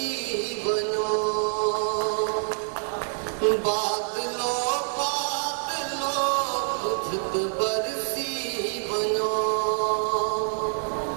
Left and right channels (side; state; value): left; silent; digital silence